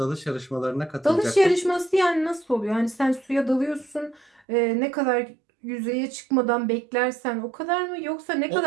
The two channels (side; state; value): left; drops out; at 4.4 s